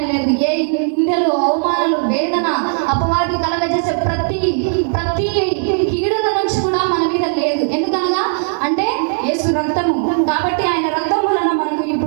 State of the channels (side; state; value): left; silent; digital silence